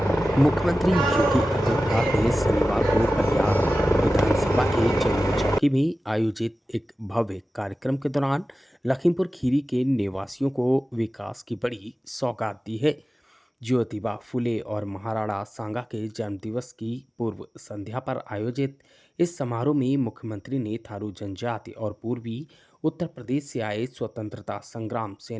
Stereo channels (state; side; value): normal; both; correlation 0.95